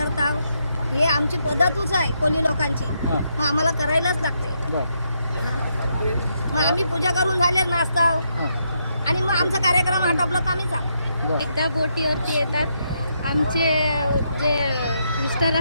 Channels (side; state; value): both; inverted; correlation -0.78